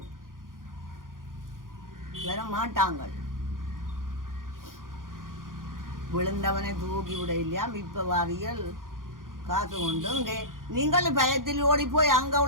வர மாட்டாங்க. விழுந்தவனை தூக்கி விட இல்லையா இப்ப வாரியல் காசு கொண்டு இங்கே நீங்கள் பயத்தில் ஓடி போய் அங்க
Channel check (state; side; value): late; left; 0.90 ms